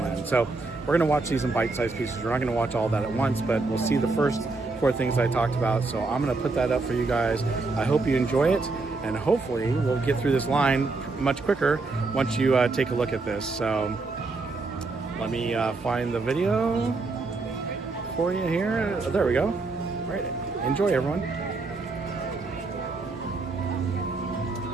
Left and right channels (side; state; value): left; quieter; 3.7 dB